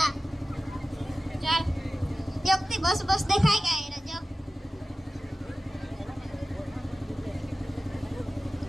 बस बस देखाय काय रजब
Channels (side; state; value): both; normal; correlation 0.95